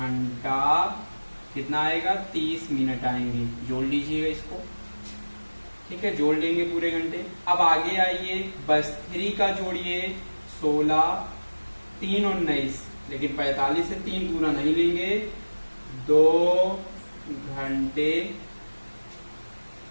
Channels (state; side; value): inverted; both; correlation -1.00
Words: कितना आएगा 30 मिनट आएंगे। जोड़ लीजिएगा इसको। ठीक है, जोड़ लेंगे पूरे घंटे। अब आगे आइए, बस 3 का जोड़िए 16, 3 और 19, लेकिन 45 से 3 पूरा नहीं लेंगे, 2 घंटे।